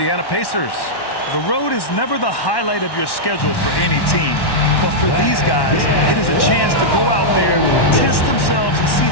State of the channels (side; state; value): right; late; 1.1 ms